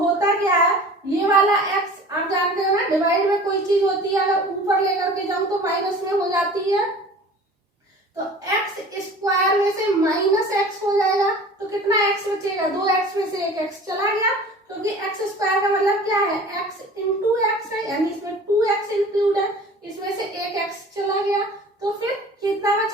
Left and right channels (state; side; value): normal; both; correlation 0.43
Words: क्या है, ये वाला x आप जानते हो ना, डिवाइड में कोई चीज होती है अगर ऊपर लेकर के जाऊं तो माइनस में हो जाती है, तो x स्क्वायर में से माइनस x हो जाएगा, तो कितना x बचेगा, 2x में से 1x चला गया, क्योंकि x स्क्वायर का मतलब क्या है, x इंटू x है, यानी इसमें 2x इंक्लूड है, इसमें से 1x चला गया, तो फिर कितना